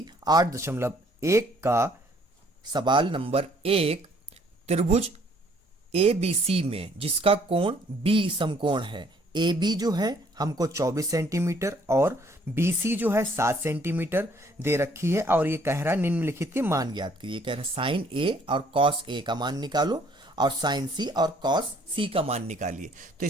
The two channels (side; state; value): both; normal; correlation 0.62